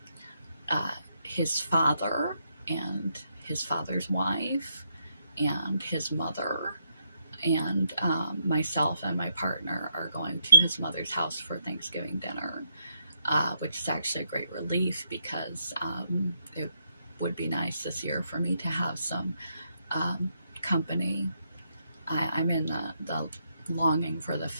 his father and his father's wife and his mother and myself and my partner are going to his mother's house for Thanksgiving dinner, which is actually a great relief, because it would be nice this year for me to have some company. I'm in the longing for the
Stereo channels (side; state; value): both; inverted; correlation -0.78